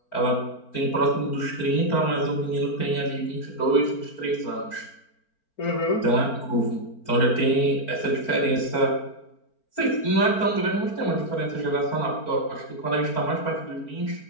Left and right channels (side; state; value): right; late; 4.4 ms